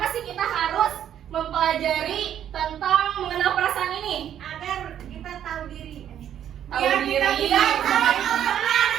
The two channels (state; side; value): quieter; left; 10.1 dB